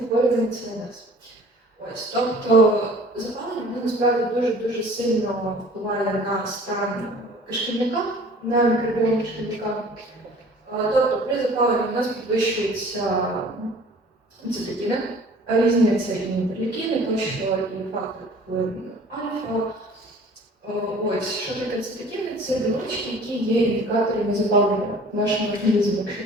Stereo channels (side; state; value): both; normal; correlation 0.49